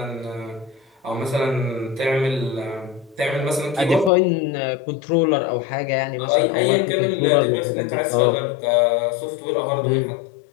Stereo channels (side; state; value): right; drops out; at 4.1 s